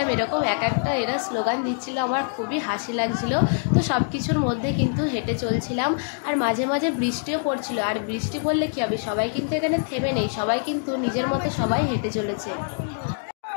এরকম এক একটা এরা স্লোগান দিচ্ছিল, আমার খুবই হাসি লাগছিল। তো সব কিছুর মধ্যে কিন্তু হেঁটে চলছিলাম। আর মাঝে মাঝে বৃষ্টিও পড়ছিল। আর বৃষ্টি পড়লে কী হবে, সবাই কিন্তু এখানে থেমে নেই, সবাই কিন্তু নিজের মতো সবাই হেঁটে চলেছে।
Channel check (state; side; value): silent; right; digital silence